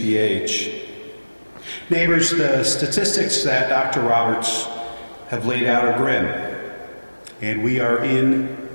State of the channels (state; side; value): inverted; both; correlation -1.00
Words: Neighbors, the statistics that Dr. Roberts have laid out are grim, and we are in